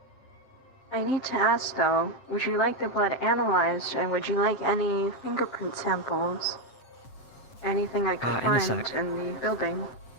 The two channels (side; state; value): right; late; 7.9 ms